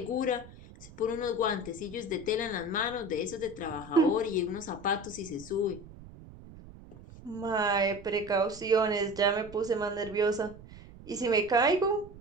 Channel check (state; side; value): noise; right; rumble, 18 dB below the sound